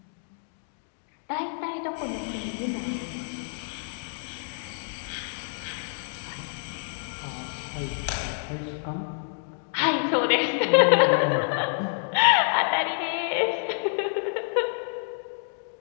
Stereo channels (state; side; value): silent; right; digital silence